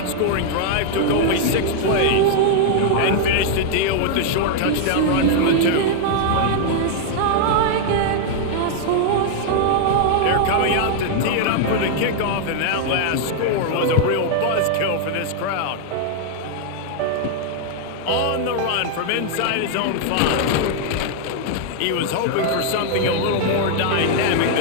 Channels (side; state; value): both; different; correlation -0.01